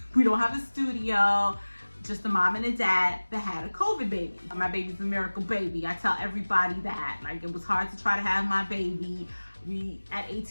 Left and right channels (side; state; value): both; inverted; correlation -1.00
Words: don't have a studio. Just a mom and a dad that had a COVID baby. My baby's a miracle baby. I tell everybody that. Like, it was hard to try to have my baby. At